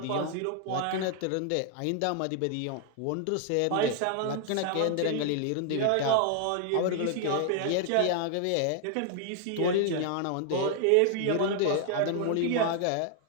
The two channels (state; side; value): different; both; correlation 0.00